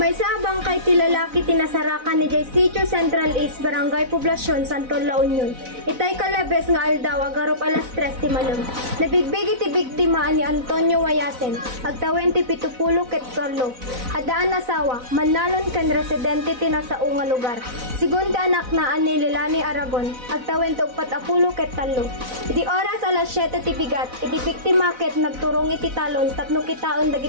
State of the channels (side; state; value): left; late; 4.0 ms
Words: sabang kay tilalaki tinasarakan ni Jay Sitio Central East Barangay Poblasyon Santol La Union. Itay kalabes nga aldaw agarop alas 3 ti malam. Nabigbigi ti biktima ni Antonio Wayasen, agtawen ti 70 ket Carlo. Adaan asawa, manalon ken residente ti nasao nga lugar. Sigun ti anak na ani Lilani Aragon, agtawen ti 40 ket tallo. Iti oras alas 7 ti bigat, iti biktima ket nagturong iti talon tapno kitaon